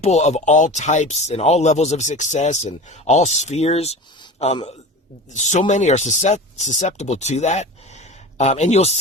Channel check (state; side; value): normal; both; correlation 0.33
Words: of all types and all levels of success and all spheres, so many are susceptible to that. And you'll